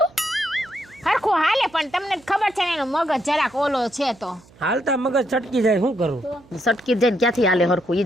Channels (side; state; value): right; noise; hum, 27 dB below the sound